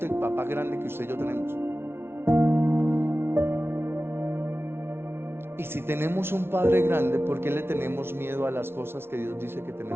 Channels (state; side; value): late; left; 0.12 ms